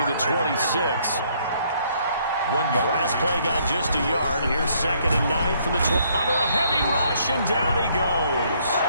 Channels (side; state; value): both; inverted; correlation -0.67